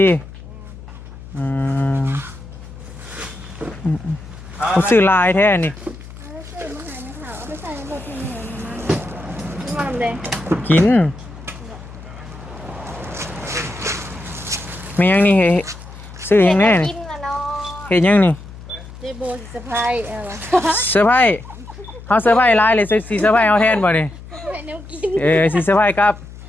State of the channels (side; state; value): left; noise; hum, 16 dB below the sound